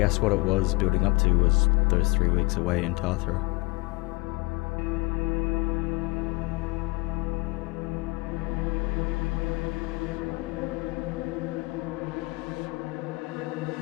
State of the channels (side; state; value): right; quieter; 25.8 dB